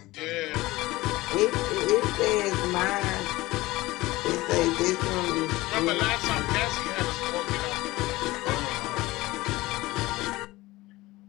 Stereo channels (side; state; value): right; quieter; 19.4 dB